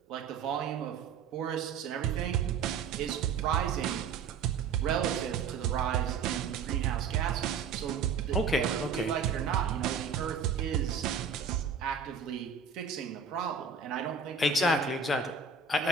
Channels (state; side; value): quieter; left; 5.6 dB